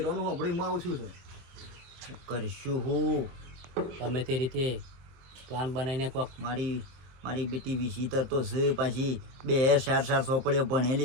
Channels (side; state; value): left; late; 23 ms